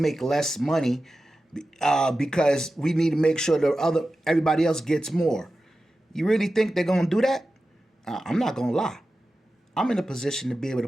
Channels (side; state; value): both; normal; correlation 0.93